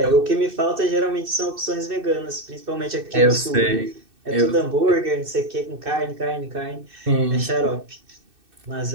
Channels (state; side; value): late; left; 2.6 ms